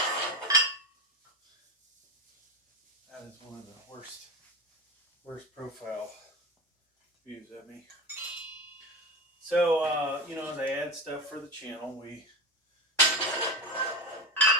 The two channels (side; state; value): both; normal; correlation 0.20